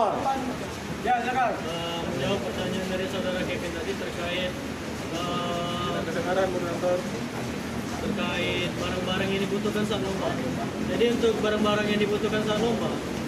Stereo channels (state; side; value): identical; both; correlation 1.00